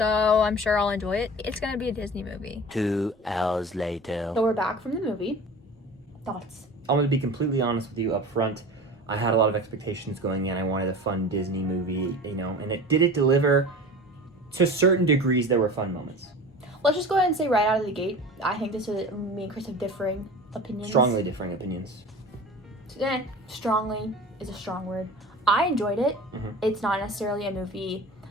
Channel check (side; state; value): both; normal; correlation 0.37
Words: I'm sure I'll enjoy it. It's gonna be a Disney movie. 2 hours later. So we're back from the movie. Thoughts? I'm gonna be completely honest with you up front. I had a lot of expectations going in. I wanted a fun Disney movie, and it deliver. To certain degrees, there were fun moments. Let's just go ahead and say right out of the gate, I think this is me and Chris have differing opinions. Strongly differing opinions. Strongly is a strong word. I enjoyed it. Mm-hmm. It's not necessarily a movie